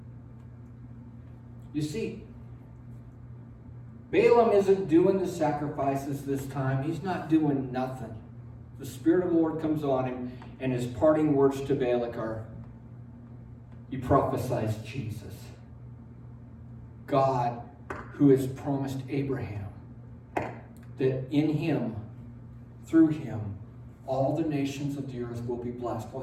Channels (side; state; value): both; identical; correlation 1.00